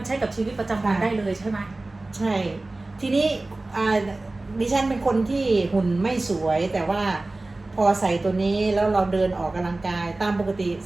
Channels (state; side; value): quieter; left; 3.0 dB